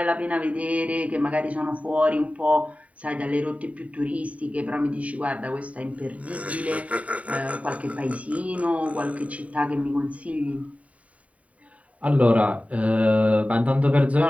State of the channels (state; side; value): late; left; 0.067 ms